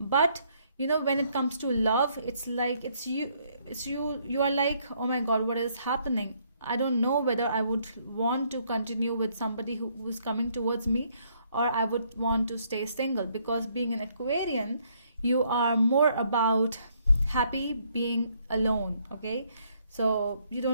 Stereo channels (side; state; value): both; inverted; correlation -0.69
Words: but you know, when it comes to love, it's like you are like, oh my god, what is happening? I don't know whether I would want to continue with somebody who's coming towards me, or I would want to stay single, because being an Aquarian, you are more about happy being alone. Okay, so you